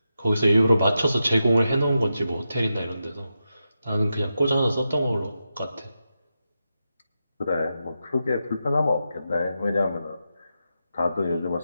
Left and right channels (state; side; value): inverted; both; correlation -0.88